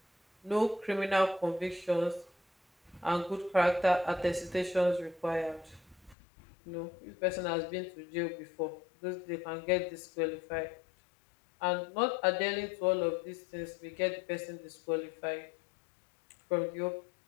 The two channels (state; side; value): drops out; right; at 6.2 s